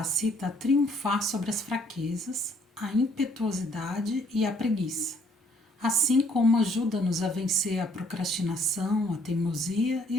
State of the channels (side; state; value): both; normal; correlation 0.64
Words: a triunfar sobre as fraquezas, a impetuosidade e a preguiça, assim como ajuda-nos a vencer a procrastinação, a teimosia